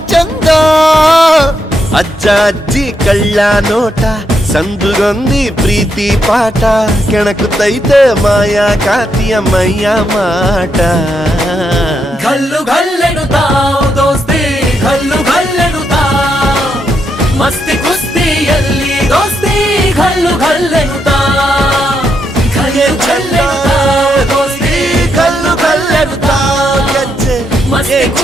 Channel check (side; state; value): both; normal; correlation 0.80